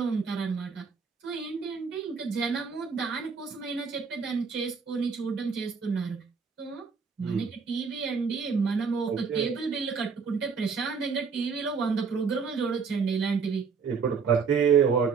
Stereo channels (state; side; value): quieter; left; 5.6 dB